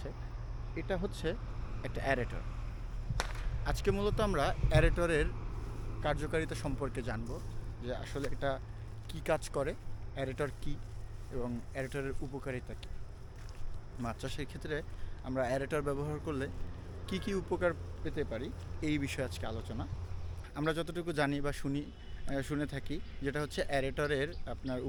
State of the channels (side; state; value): both; identical; correlation 1.00